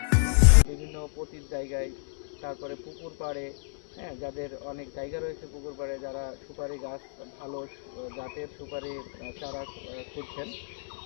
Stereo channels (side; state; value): right; silent; digital silence